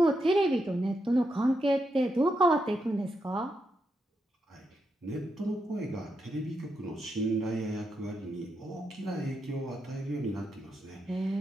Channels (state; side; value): normal; both; correlation 0.83